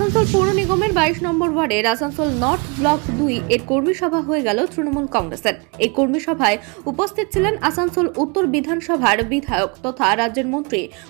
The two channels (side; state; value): left; quieter; 31.8 dB